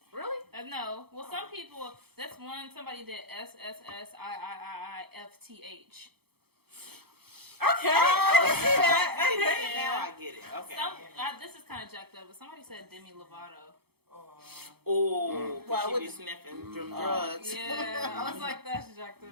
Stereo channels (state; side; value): late; left; 0.96 ms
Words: Really? No, know. Well, some people, that's one, somebody did SSSIIIIFTH. Okay. Now I get it. Okay. This is kind of jacked up, but somebody said Demi Lovato. Oh, Why she would be sniffing drugs. Yeah, I was like, that's jacked up.